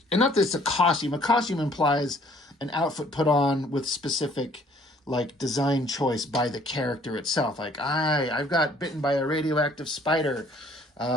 not that it's a costume. A costume implies an outfit put on with specific, like, design choice by the character itself. Like, I've got bitten by a radioactive spider.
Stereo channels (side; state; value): both; normal; correlation 0.59